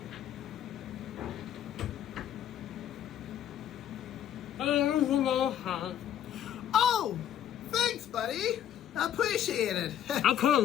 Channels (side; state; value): right; quieter; 10.5 dB